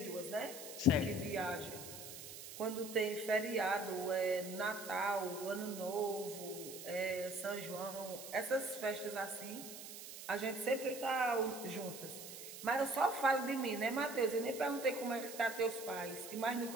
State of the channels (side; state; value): right; noise; hiss, 11 dB below the sound